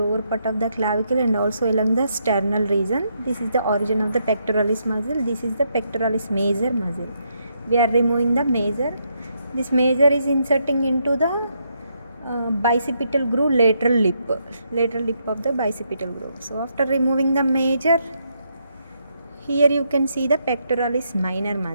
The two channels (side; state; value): both; inverted; correlation -0.77